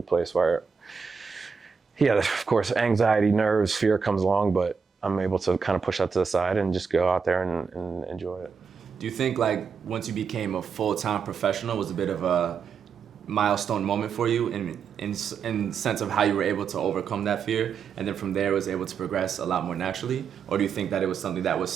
place where, yeah, of course, anxiety, nerves, fear comes along, but I'm able to kind of push that to the side and just go out there and enjoy it. Do you think, like, once you became a full-time professional was a bit of a milestone moment for you in sense of how you were able to overcome that fear, and then from there was able to progress a lot more naturally? Or do you think that it was something that was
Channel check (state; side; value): quieter; left; 6.0 dB